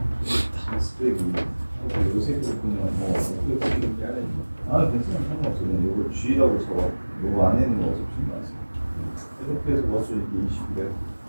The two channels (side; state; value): both; inverted; correlation -1.00